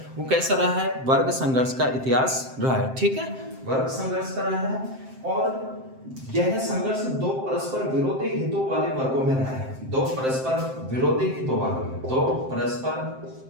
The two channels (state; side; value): late; left; 7.7 ms